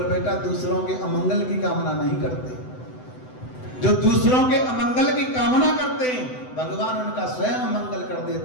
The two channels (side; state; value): right; late; 7.9 ms